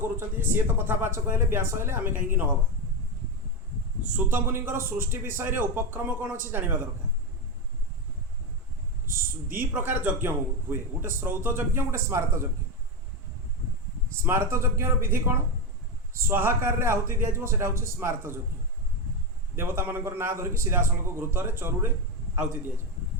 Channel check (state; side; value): normal; both; correlation 0.12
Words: सी तो कथावाचक हेले व्यास हेले आम कहीं नहबा। सूत मुनिंकर सृष्टि विषय रे उपक्रम कौन अच्छी जाना दरकार। दी प्रकार यज्ञ हुए गोटे श्रौत यज्ञ गोटे स्मारत यज्ञ। स्मारत यज्ञ विधि कौन स्वाहाकार रे आहुति दिया सेटा हूँ स्मारत यज्ञ। देवता मानकर ना धरिकी सीधा सड़क घृतरे चरुरे आहुति दिया।